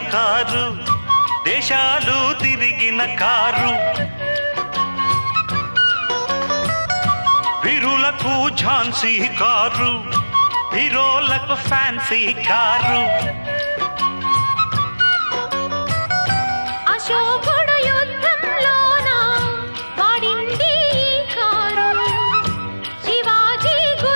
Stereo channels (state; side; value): inverted; both; correlation -1.00